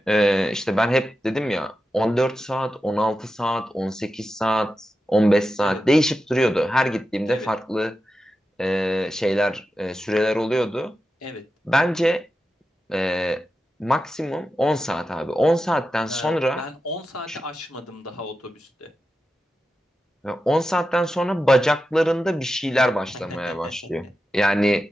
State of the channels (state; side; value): normal; both; correlation 0.91